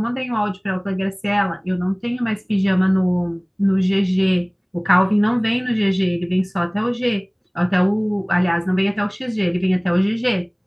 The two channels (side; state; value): both; identical; correlation 1.00